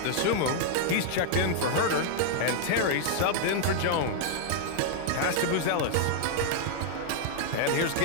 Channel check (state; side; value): different; both; correlation -0.01